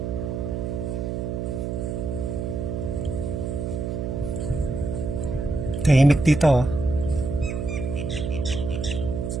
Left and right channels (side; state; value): right; noise; hum, 3 dB below the sound